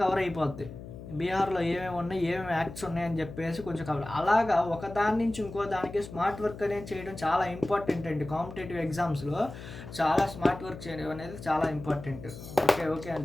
కవర్ అయిపోద్ది. బీహార్లో ఏమేమి ఉన్నాయి, ఏమేమి యాక్ట్స్ ఉన్నాయని చెప్పేసి కొంచెం కవర్. అలాగా ఒక దాని నుంచి ఇంకో దానికి స్మార్ట్ వర్క్ అనేది చేయడం చాలా ఇంపార్టెంట్ అండి. కాంపిటేటివ్ ఎగ్జామ్స్లో చాలా స్మార్ట్ వర్క్ చేయడం అనేది చాలా ఇంపార్టెంట్. ఓకే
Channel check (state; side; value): noise; left; hum, 13 dB below the sound